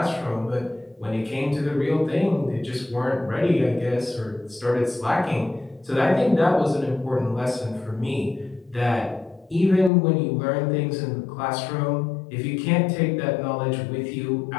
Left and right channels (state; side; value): drops out; right; at 9.9 s